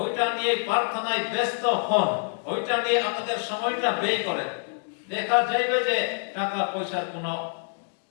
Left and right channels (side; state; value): right; silent; 61 dB below the other